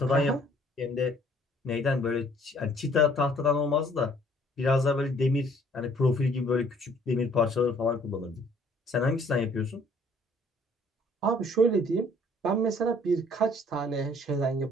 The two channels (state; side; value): normal; both; correlation 0.59